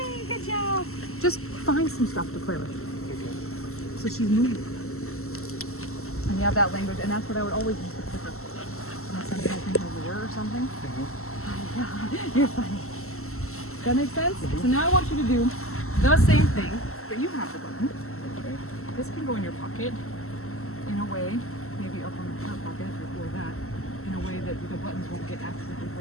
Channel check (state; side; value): late; right; 0.63 ms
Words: Good job. Just find some stuff to play with. So she's moving. And you have that language, and that's what I would always use the clicker. Unless I'm helping her rear or something. You're funny. Does that make sense? So now I want you to do the same thing, but you have the button. Okay. This can go in your pocket in a way, maybe up on the front pocket or that, in a way that the buttons won't get accidentally